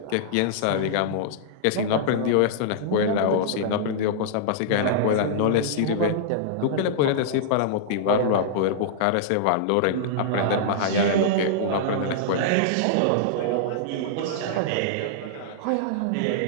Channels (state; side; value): different; both; correlation -0.02